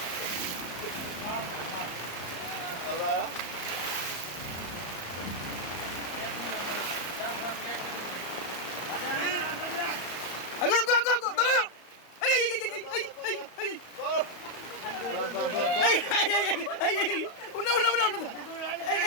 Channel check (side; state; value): right; late; 34 ms